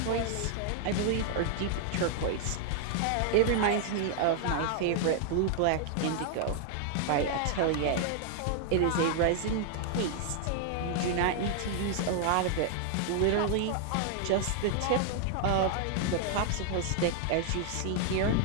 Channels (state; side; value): different; both; correlation 0.00